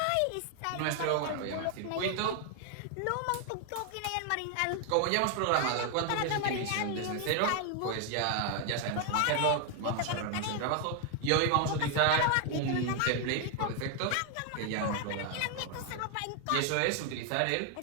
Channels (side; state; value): both; different; correlation 0.00